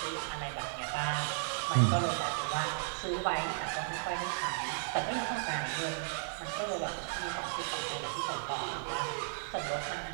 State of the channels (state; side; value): silent; left; digital silence